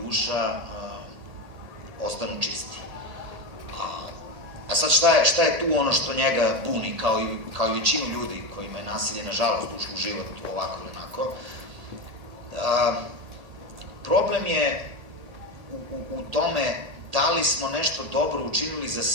ostanu čisti. A sad šta je tu ono što njega buni, kao i većinu ljudi kojima je nasilje, nažalost, ušlo u život ovako ili onako? Problem je u tome da li smo nešto dobro učinili za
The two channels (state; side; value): late; left; 1.8 ms